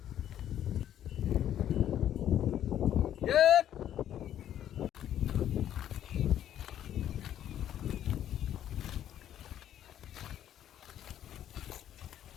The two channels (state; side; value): quieter; right; 10.9 dB